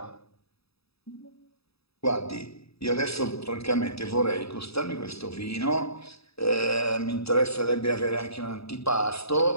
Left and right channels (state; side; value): late; right; 0.77 ms